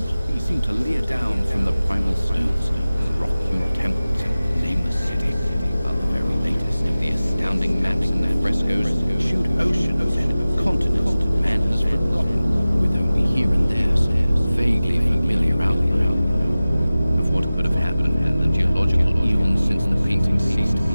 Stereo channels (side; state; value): both; inverted; correlation -0.97